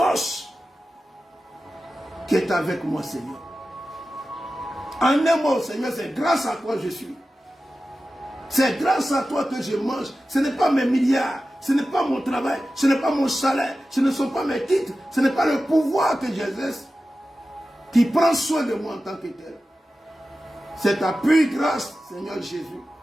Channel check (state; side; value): normal; both; correlation 0.94